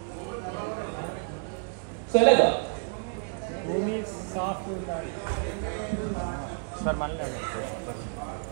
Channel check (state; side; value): silent; left; 58 dB below the other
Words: సో ఎలాగా? భూమి సాఫ్ట్ ఉండాలి సార్. మళ్ళీ